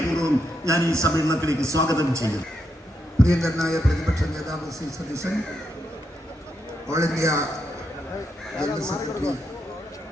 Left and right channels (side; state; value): both; normal; correlation 0.81